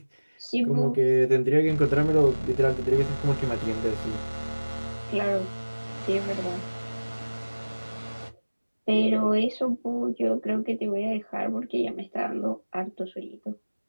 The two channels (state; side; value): inverted; both; correlation -1.00